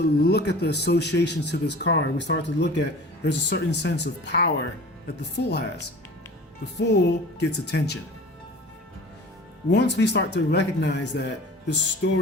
at the associations to this card, we start to look at, there's a certain sense of power that the Fool has. The Fool gets attention. Once we start to recognize that, the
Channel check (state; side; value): normal; both; correlation 0.40